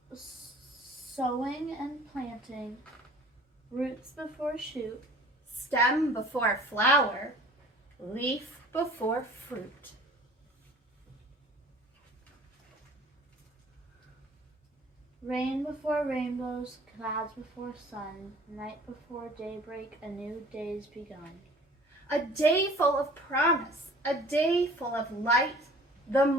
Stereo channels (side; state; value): both; normal; correlation 0.48